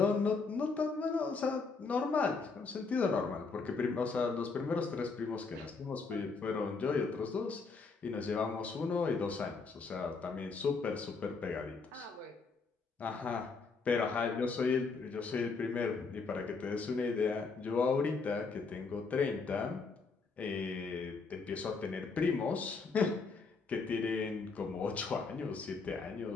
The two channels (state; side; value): quieter; right; 4.5 dB